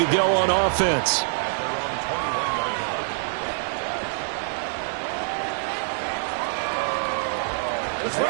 go on offense.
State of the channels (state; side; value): silent; left; digital silence